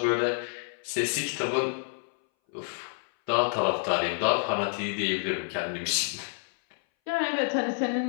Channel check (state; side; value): silent; right; 59 dB below the other